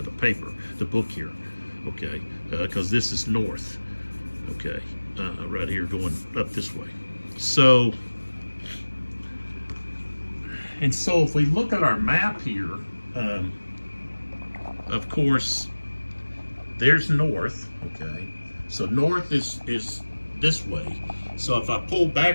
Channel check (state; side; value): inverted; both; correlation -1.00